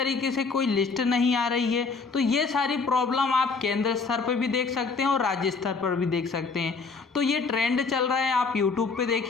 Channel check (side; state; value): right; quieter; 4.5 dB